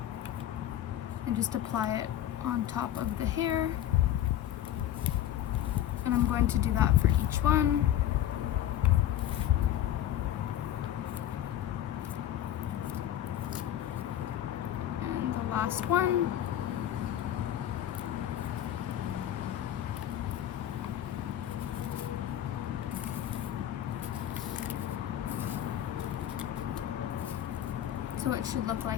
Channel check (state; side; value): quieter; right; 11.6 dB